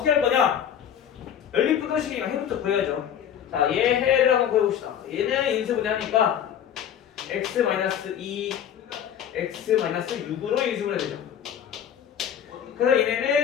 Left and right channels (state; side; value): quieter; right; 9.3 dB